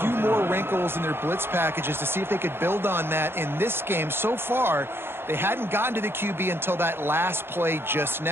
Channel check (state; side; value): late; left; 0.11 ms